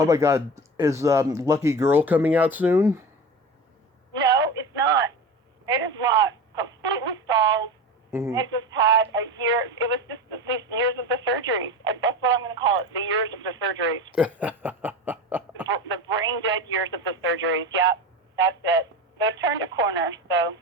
my God, is Lucky Girl coming out soon? No, it's not. It is not. Completely stalled. Mm-hmm. It just had a year. It was just these years of the surgeries. That's what I'm going to call it, the years of the surgeries. The brain dead years of the surgeries. Yep, that's it. They've turned a corner, so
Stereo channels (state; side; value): normal; both; correlation 0.28